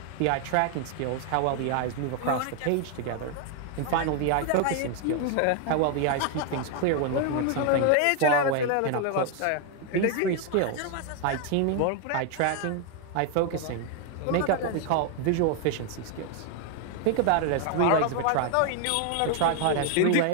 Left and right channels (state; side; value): different; both; correlation 0.01